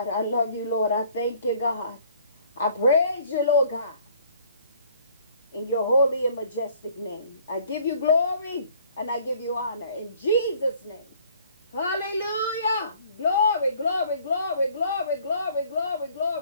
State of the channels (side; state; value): both; inverted; correlation -0.57